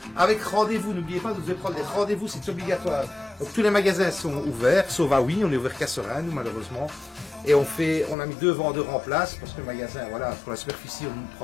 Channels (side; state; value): right; drops out; at 8.2 s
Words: Avec rendez-vous, n'oubliez pas, vous devez prendre des rendez-vous, c'est obligatoire. Donc tous les magasins sont ouverts, sauf à oui, on est ouvert qu'à Serein, nous malheureusement. Et on a mis 2 vendeurs en place, parce que le magasin, voilà, pour la superficie, on ne